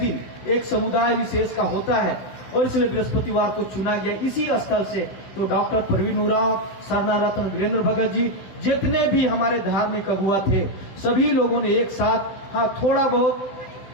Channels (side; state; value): right; late; 16 ms